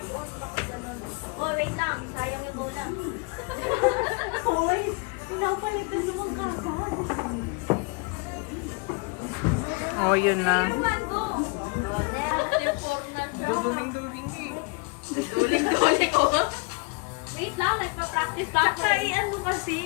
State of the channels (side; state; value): right; quieter; 30.6 dB